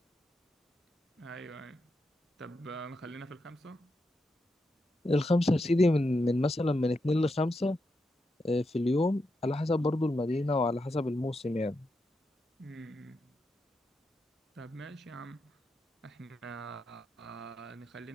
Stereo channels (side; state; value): both; normal; correlation 0.85